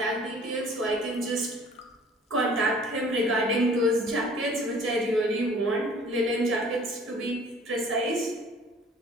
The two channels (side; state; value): both; normal; correlation 0.51